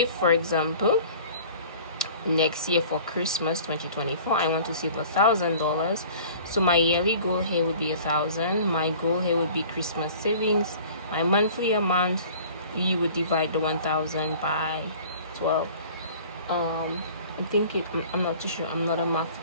for example, next year for Christmas 2024 I want to save $1,000, so my yearly goal here would be 1,000. My goal here would be Christmas savings. My monthly amount, you would divide the 1,000 by 12. I'm not too sure, I'm not a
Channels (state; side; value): inverted; both; correlation -0.46